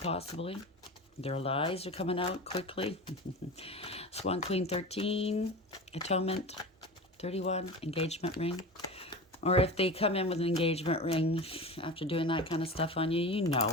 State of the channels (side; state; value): both; normal; correlation 0.30